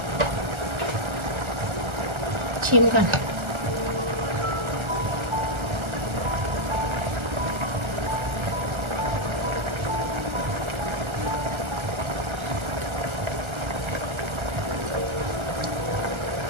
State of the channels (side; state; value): left; late; 1.3 ms